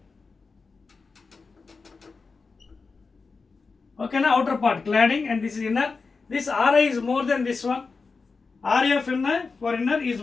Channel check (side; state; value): right; quieter; 4.5 dB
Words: Okay, now outer part cladding, and this is inner. This Ri is more than this one. Ri of inner for inner is